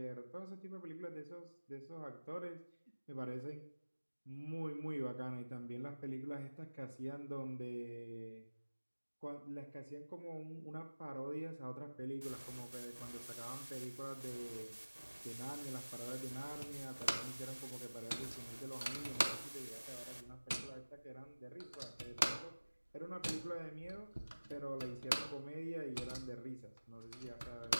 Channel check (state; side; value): inverted; both; correlation -1.00